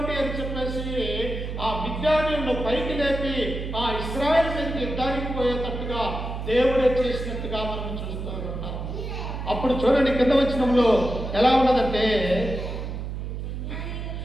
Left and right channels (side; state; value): right; noise; hum, 5 dB below the sound